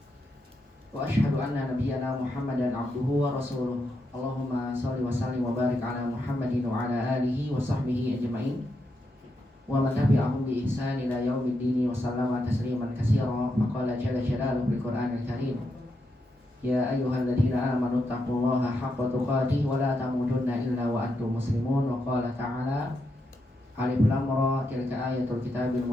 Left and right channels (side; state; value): both; normal; correlation 0.83